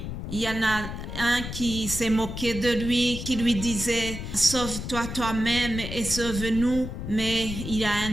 Il y en a un qui s'est moqué de lui, qui lui disait « Sauve-toi toi-même et sauve-nous ». Mais il y a un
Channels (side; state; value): left; noise; rumble, 7 dB below the sound